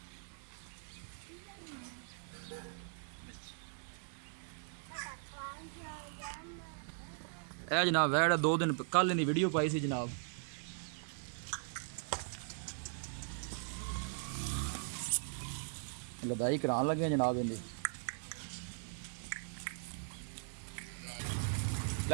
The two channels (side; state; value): left; silent; digital silence